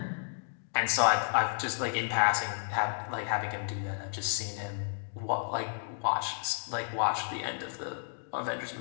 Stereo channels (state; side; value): silent; right; digital silence